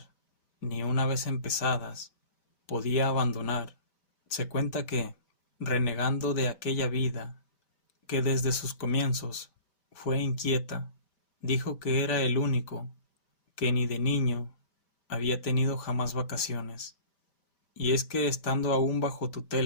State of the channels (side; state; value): right; late; 5.1 ms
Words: ni una vez empezadas, podía abandonar. Se cuenta que, renegando de aquella vida, que desde sus comienzos fue inquieta, dijo que era el único que ni de niño había tenido jamás vacaciones. Y es que estando aún bajo